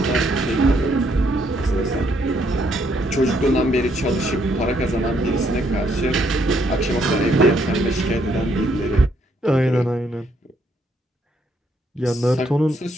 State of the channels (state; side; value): normal; both; correlation 0.72